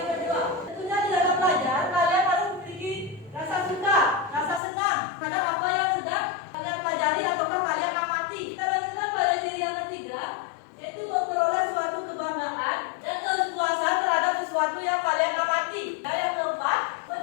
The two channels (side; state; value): right; drops out; at 4.6 s